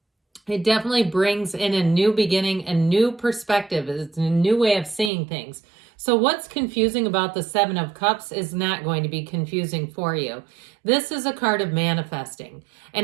it definitely brings in a new beginning, a new perspective. It's a new way of seeing things. So what's confusing about the Seven of Cups is not going to be confusing for you. This is a card of manifesting.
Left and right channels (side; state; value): left; drops out; at 5.1 s